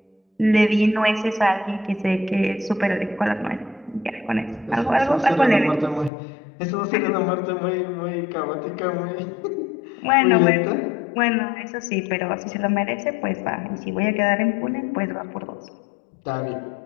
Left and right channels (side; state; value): right; drops out; at 6.1 s